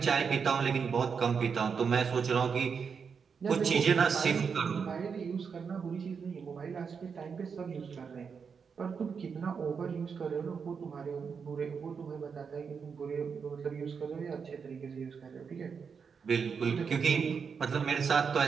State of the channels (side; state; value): left; quieter; 6.1 dB